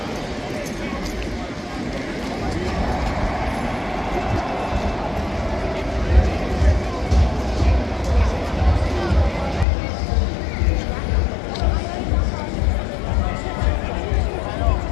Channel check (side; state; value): right; drops out; at 9.7 s